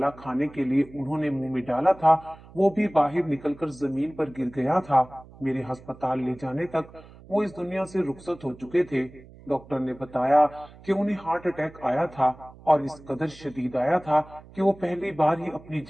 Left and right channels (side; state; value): right; noise; hum, 21 dB below the sound